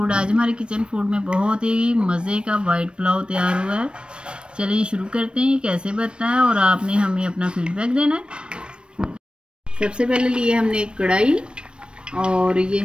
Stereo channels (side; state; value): left; late; 0.056 ms